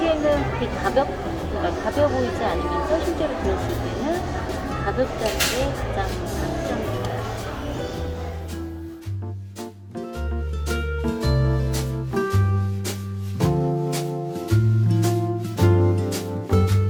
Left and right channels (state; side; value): identical; both; correlation 1.00